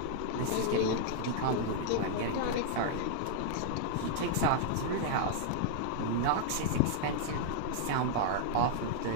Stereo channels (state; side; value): different; both; correlation -0.01